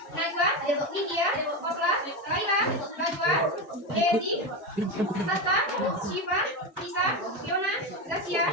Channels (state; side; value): normal; both; correlation 0.16